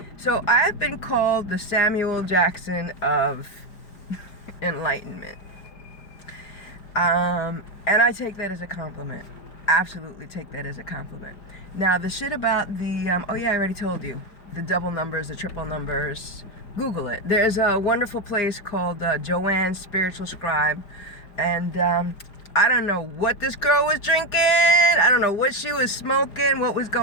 So I've been called the Samuel Jackson of enlightenment. And I take that as a compliment. Absolutely take that as a compliment. Now, the shit about the, I already told you. The double numbers, the triple numbers. Google it. There's a wonderful place called Joanne's Spiritual Scribe. And I don't know what this girl was drinking. I don't know what she was smoking, what was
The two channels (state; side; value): late; right; 4.9 ms